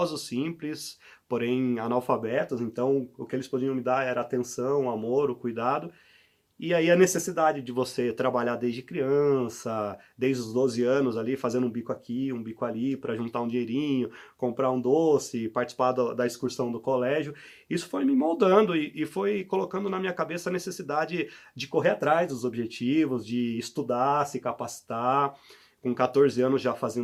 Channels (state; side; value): identical; both; correlation 1.00